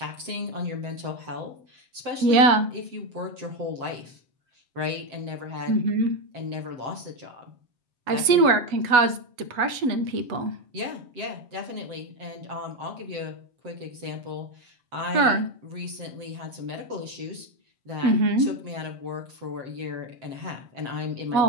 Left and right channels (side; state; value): left; late; 7.5 ms